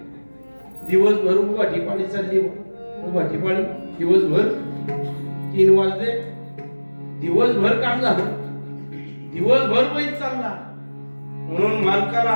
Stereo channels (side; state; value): both; inverted; correlation -1.00